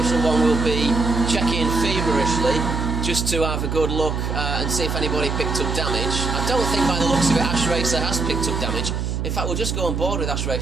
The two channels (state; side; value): noise; right; hum, 2 dB below the sound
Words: 1 will be checking feverishly just to have a good look and see if anybody picked up damage. I don't think by the looks of it Ash Racer has picked up damage. In fact, we'll just go on board with Ash